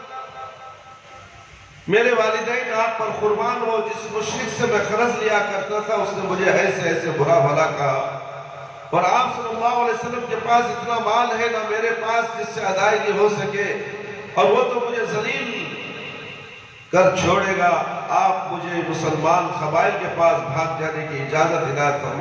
میرے والدین آپ پر قربان ہو. جس مشرک سے میں قرض لیا کرتا تھا اس نے مجھے ایسے ایسے برا بھلا کہا. اور آپ صلی اللہ علیہ وسلم کے پاس اتنا مال ہے نہ میرے پاس جس سے ادائیگی ہو سکے، اور وہ تو مجھے ذلیل کر چھوڑے گا، آپ مجھے مسلمان قبائل کے پاس بھاگ جانے کی اجازت عنایت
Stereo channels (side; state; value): both; identical; correlation 1.00